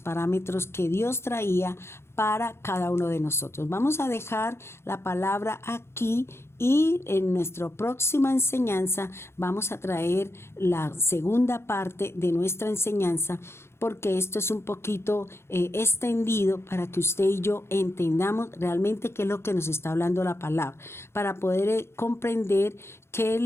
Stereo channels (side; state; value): right; late; 0.12 ms